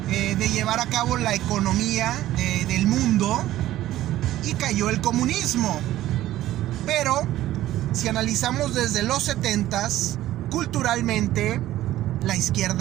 de llevar a cabo la economía del mundo, y cayó el comunismo. Pero si analizamos desde los 70s, culturalmente la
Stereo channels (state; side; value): quieter; left; 14.4 dB